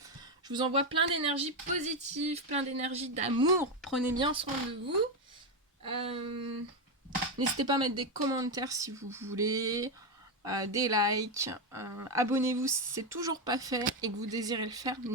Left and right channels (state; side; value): normal; both; correlation 0.08